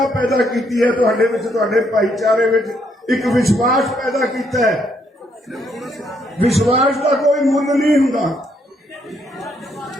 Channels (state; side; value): normal; both; correlation 0.73